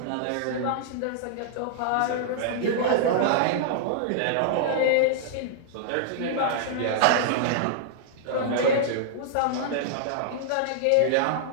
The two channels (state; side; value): different; both; correlation -0.01